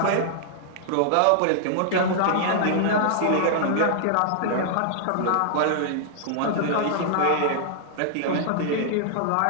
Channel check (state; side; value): different; both; correlation -0.01